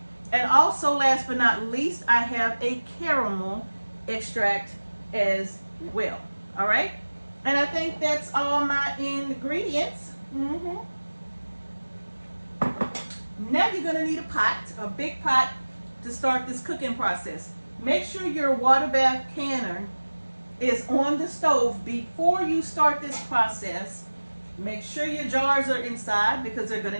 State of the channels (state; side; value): inverted; both; correlation -1.00